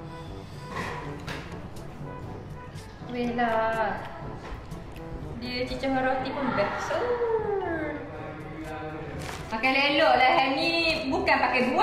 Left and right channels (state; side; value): identical; both; correlation 1.00